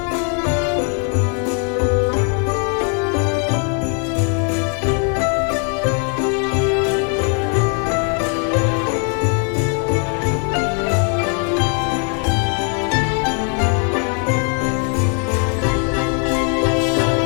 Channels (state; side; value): quieter; right; 39.5 dB